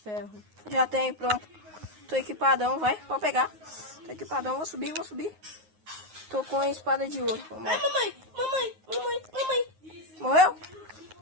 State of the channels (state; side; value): late; left; 9.5 ms